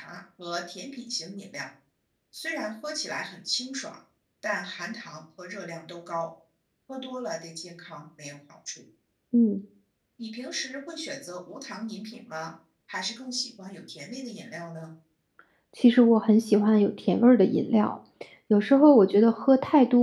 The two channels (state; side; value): identical; both; correlation 1.00